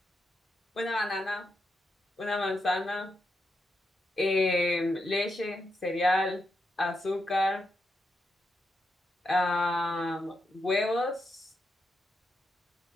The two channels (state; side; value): normal; both; correlation 0.84